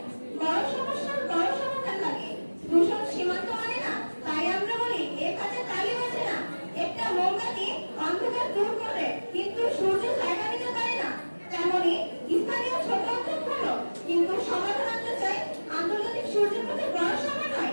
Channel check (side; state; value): both; inverted; correlation -1.00